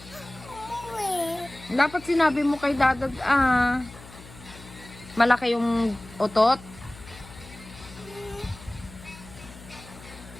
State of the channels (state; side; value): noise; left; hum, 18 dB below the sound